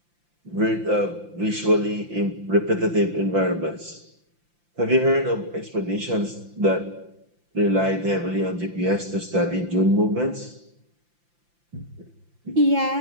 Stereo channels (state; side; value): late; left; 5.8 ms